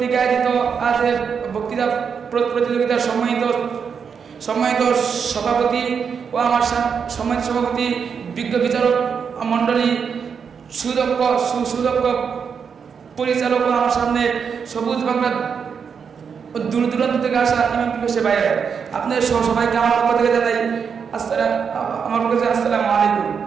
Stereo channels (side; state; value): left; quieter; 6.5 dB